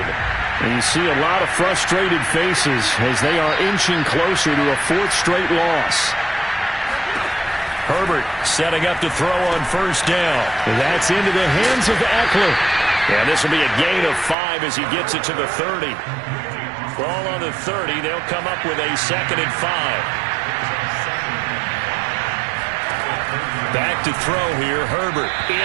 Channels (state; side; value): drops out; left; at 14.4 s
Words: And you see a lot of frustrated faces as they are inching closer to a 4th straight loss. Herbert setting up to throw on 1st down. And that's into the hands of Eckler. And this will be a gain of 5 as he gets it to the 30. Ball on the 30. They'll come up with a 2nd and 5. Back to throw here, Herbert,